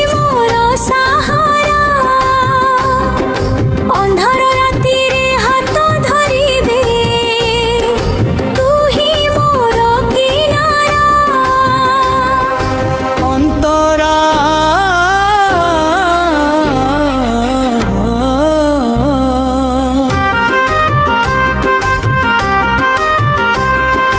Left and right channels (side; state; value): both; identical; correlation 1.00